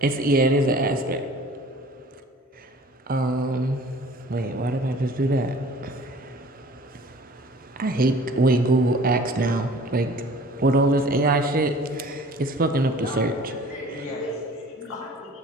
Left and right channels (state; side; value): normal; both; correlation 0.48